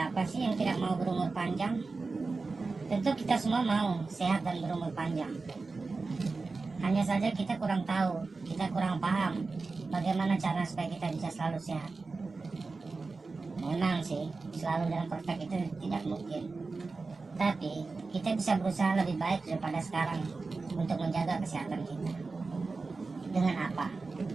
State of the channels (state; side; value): quieter; left; 3.9 dB